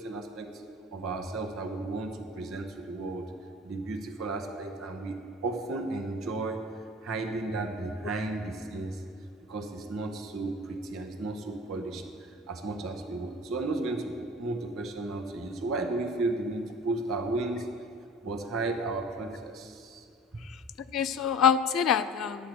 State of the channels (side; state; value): both; normal; correlation 0.41